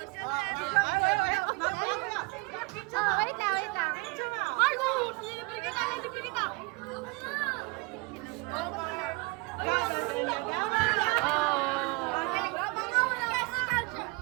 Wait lang. Marcos! Libre ka na! Libre ka na!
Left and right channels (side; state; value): left; quieter; 27.7 dB